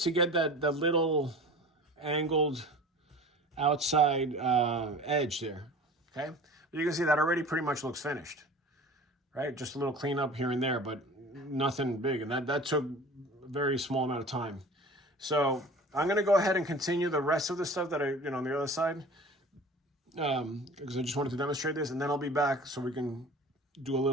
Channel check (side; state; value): both; normal; correlation 0.41